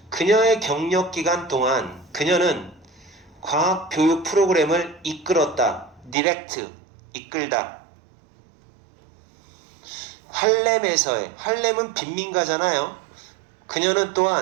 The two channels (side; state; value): left; drops out; at 6.2 s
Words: 그녀의 경력 기간 동안 그녀는 과학 교육 프로그램을 이끌었다. 디렉트, 이끌다. 할렘은 빈민가잖아요. 그녀는